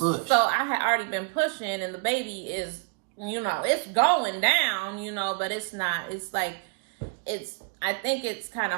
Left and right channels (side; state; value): left; quieter; 34.7 dB